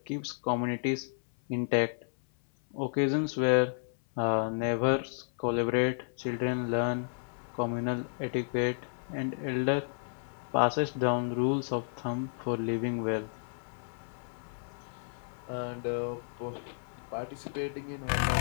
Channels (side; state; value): right; silent; 56 dB below the other